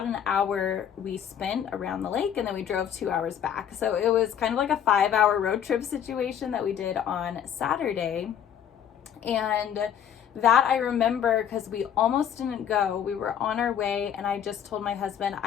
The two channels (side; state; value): right; quieter; 9.0 dB